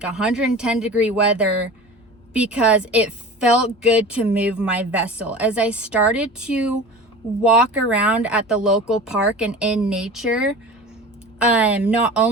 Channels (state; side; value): normal; both; correlation 0.36